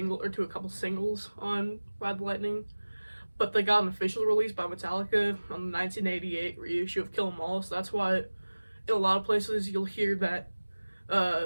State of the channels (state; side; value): inverted; both; correlation -1.00